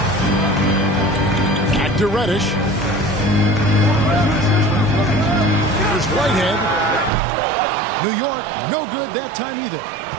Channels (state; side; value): drops out; left; at 7.1 s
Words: Back to Reddish. Here's Whitehead. New York, no good that time either.